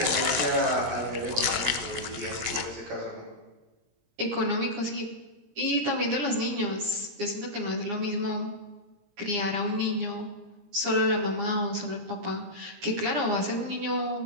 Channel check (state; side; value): late; left; 17 ms